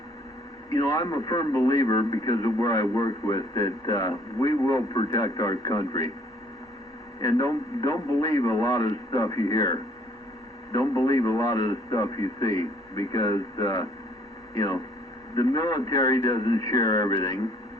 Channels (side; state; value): both; normal; correlation 0.61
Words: You know, I'm a firm believer, because of where I worked with, that we will protect our country. And don't believe a lot of the stuff you hear. Don't believe a lot of the stuff you see, because, you know, the military doesn't share everything.